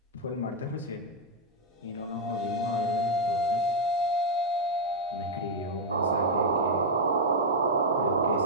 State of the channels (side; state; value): both; normal; correlation -0.02